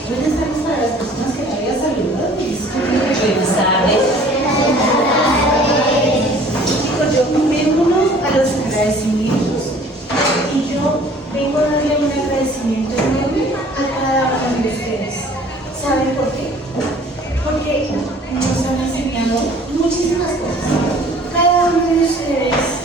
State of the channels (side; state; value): both; normal; correlation 0.52